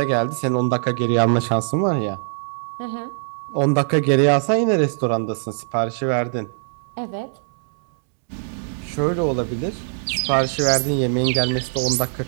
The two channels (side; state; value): left; silent; digital silence